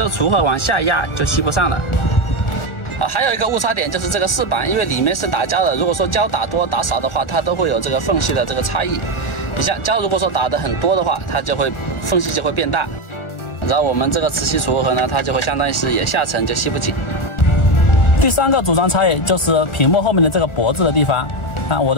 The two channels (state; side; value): late; right; 1.4 ms